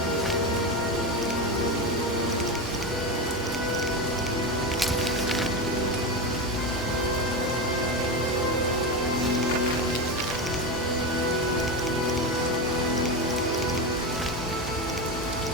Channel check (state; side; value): normal; both; correlation 0.18